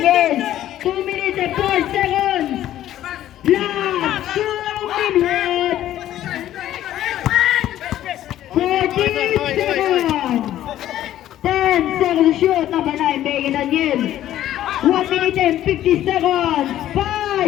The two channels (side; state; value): right; quieter; 12.7 dB